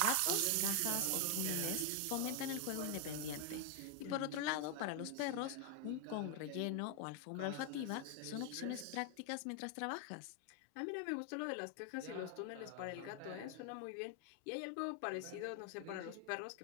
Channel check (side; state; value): both; different; correlation 0.01